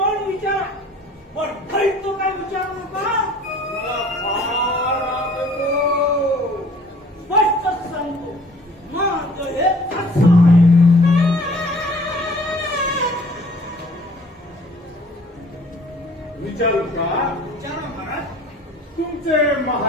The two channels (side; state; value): both; normal; correlation 0.52